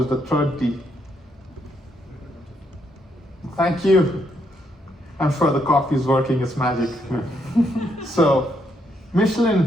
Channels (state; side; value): normal; both; correlation 0.75